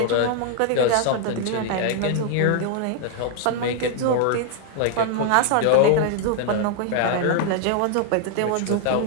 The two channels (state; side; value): different; both; correlation 0.00